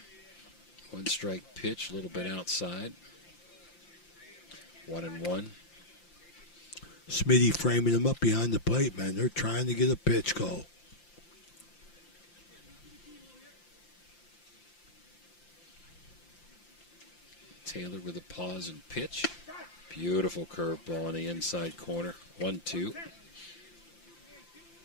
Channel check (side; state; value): right; late; 5.8 ms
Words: 1 strike pitch, a little bit outside. 1-1. Smitty framing him up behind the plate, man. They're trying to get a pitch call. Taylor with a pause and pitch. Beautiful curveball in the inside corner. 1-2.